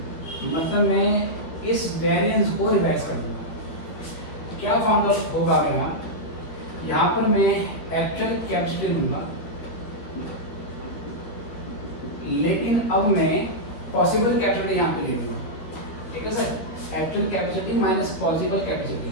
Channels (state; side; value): late; right; 12 ms